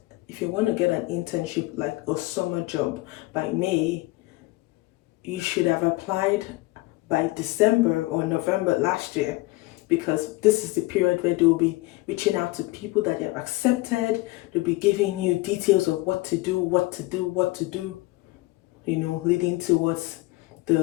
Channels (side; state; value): right; quieter; 20.9 dB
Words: an internship like a summer job by May, you should have applied by December or November last year, because this is the period where they'll be reaching out to people that they have accepted. They'll be giving you details of what to do, leading towards